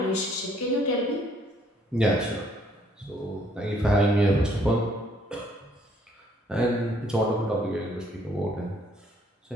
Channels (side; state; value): both; normal; correlation 0.64